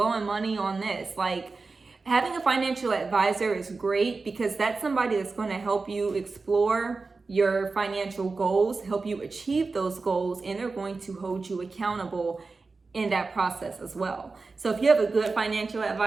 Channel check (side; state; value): left; quieter; 4.0 dB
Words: money on this? Like, having a financial advisor is great, because that's somebody that's going to help you explore your financial goals, help you achieve those goals, and they're going to hold you accountable in that process as well. So if you have a good financial